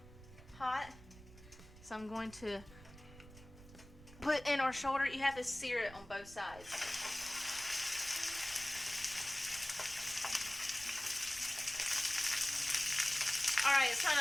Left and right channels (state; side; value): noise; right; rumble, 19 dB below the sound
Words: hot. So I'm going to put in our shoulder. You have to sear it on both sides. Alright, it's kind